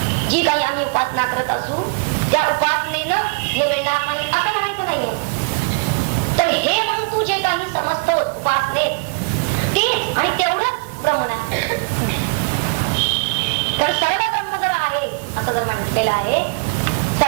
जी काही आम्ही उपासना करत असू त्या उपासनेनं हे मिळणार नाही असं म्हणायचं नाहीये. तर हे म्हणून तू जे काही समजतो उपासनेत तेच आणि तेवढंच ब्रह्म नाही. तर सर्व ब्रह्म जर आहे असं जर म्हटलेलं आहे,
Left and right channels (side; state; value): left; quieter; 32.5 dB